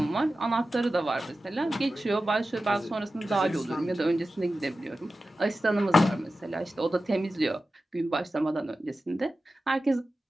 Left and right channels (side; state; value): both; normal; correlation 0.94